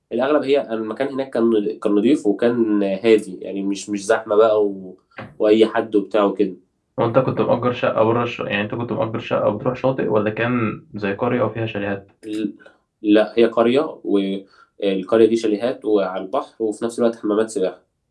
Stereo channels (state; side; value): identical; both; correlation 1.00